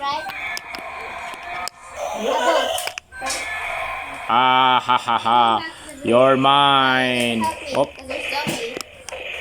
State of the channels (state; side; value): identical; both; correlation 1.00